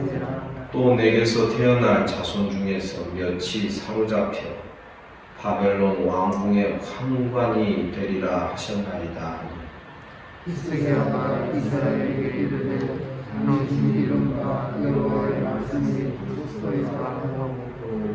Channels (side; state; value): both; identical; correlation 1.00